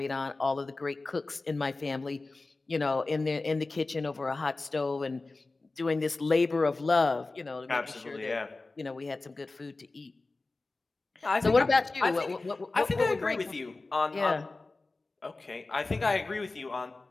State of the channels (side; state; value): right; quieter; 3.4 dB